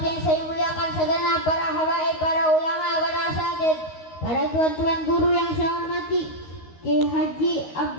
saya muliakan segenap para habaib, para ulama, para asatidz, para tuan-tuan guru yang saya hormati, Ki Haji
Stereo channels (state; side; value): late; right; 13 ms